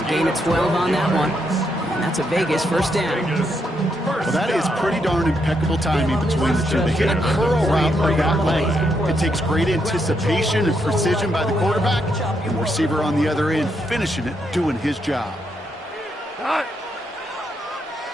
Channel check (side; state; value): both; normal; correlation 0.79